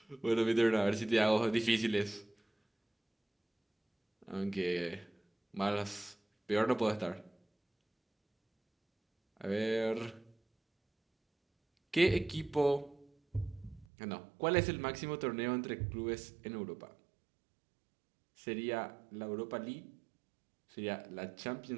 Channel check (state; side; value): drops out; left; at 13.9 s